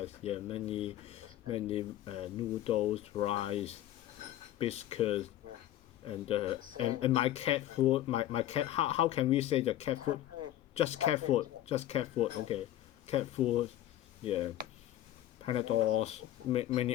Yeah, many noodles, rice, biscuits, and my cat food. My cat. How can we say the cat food? Just cat food. Just cat food. Okay, cat food. Yeah, Panadols.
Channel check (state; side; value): quieter; right; 13.2 dB